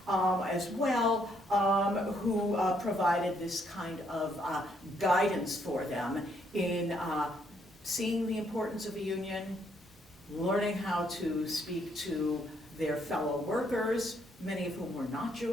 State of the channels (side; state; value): both; normal; correlation 0.72